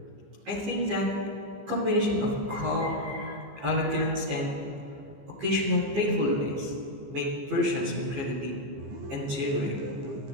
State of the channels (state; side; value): late; left; 15 ms